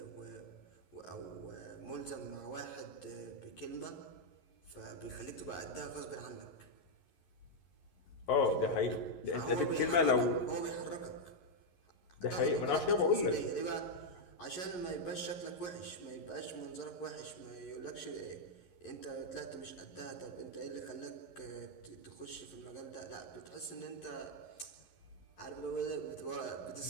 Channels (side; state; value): right; late; 11 ms